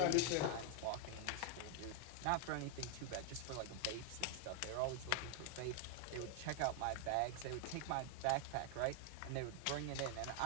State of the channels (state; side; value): different; both; correlation 0.00